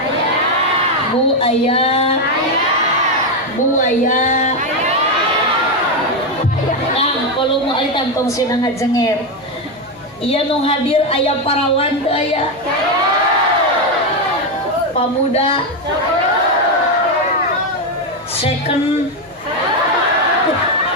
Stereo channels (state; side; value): noise; right; hum, 29 dB below the sound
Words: Bu ayah, Bu ayah. Kang, kalau mau alitan tong sinang ngajenger. Iya nung hadir ayah parawan teu aya. Pamuda. Second.